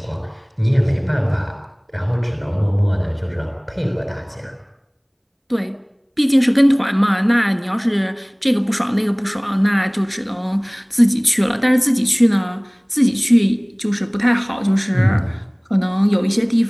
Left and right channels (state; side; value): identical; both; correlation 1.00